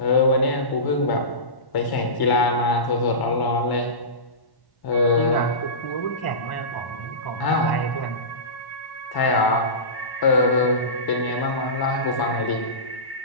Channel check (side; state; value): right; late; 1.1 ms